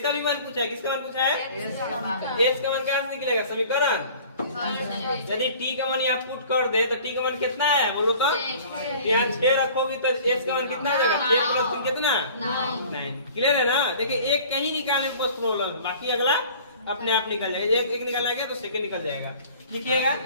का भी मान पूछा है। किसका मान पूछा है? s का मान क्या निकलेगा? समीकरण। यदि t का मान यहाँ पुट कर दे तो t का मान कितना है बोलो तो? यहाँ 6 रखोगी तो s का मान कितना आ जाएगा? 6 प्लस 3 कितना? 9। क्लियर है ना? देखिए एक कहीं निकालने में बहुत प्रॉब्लम, बाकी अगला अपने आप निकल जाएगा। एक निकल जाएगा तो सेकंड निकल जाएगा। लिखिएगा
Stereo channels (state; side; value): inverted; both; correlation -0.47